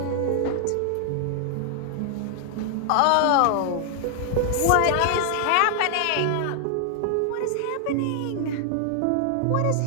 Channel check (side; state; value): both; different; correlation 0.00